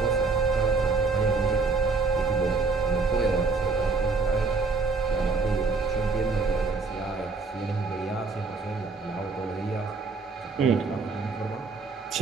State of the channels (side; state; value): left; quieter; 4.1 dB